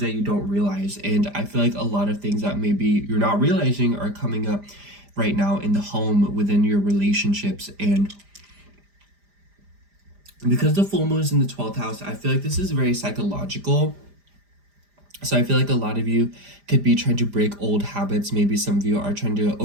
that you don't realize. And I feel like a lot of things that maybe you're not realizing are coming up right now in the home, within your relationships. And because the full moon is in the 12th house, I feel like this is very psychological. So I feel like a lot of you could be trying to break old habits. Maybe some of you are trying to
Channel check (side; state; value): left; late; 5.0 ms